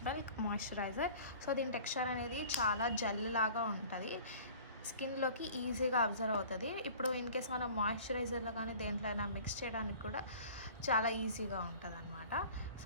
milk moisturiser. So దీని టెక్స్చర్ అనేది చాలా జెల్ లాగా ఉంటుంది, స్కిన్లోకి ఈజీగా అబ్జర్వ్ అవుతుంది. ఇప్పుడు ఇన్ కేస్ మనం మాయిశ్చరైజర్లో కానీ దేంట్లో అయినా మిక్స్ చేయడానికి కూడా చాలా ఈజీగా ఉంటుంది అనమాట.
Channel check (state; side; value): inverted; both; correlation -0.46